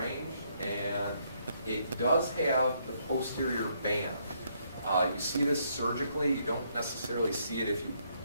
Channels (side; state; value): both; inverted; correlation -0.72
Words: and it does have the posterior band. You see this surgically. You don't necessarily see it if you